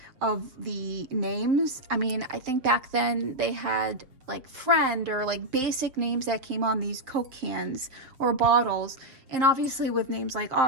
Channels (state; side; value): late; left; 7.3 ms